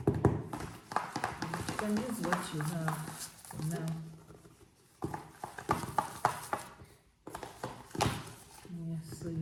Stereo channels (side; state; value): both; identical; correlation 1.00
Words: You can use what you have for now. Yeah, so